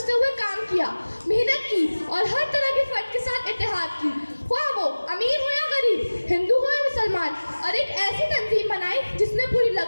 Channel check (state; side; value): inverted; both; correlation -1.00